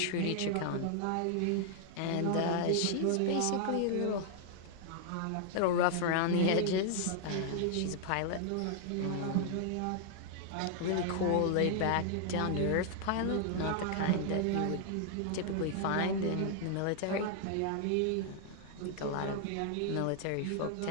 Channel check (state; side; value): different; both; correlation 0.00